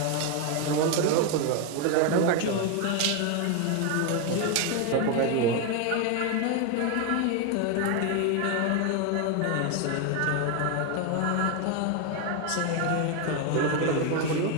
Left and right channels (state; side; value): different; both; correlation 0.01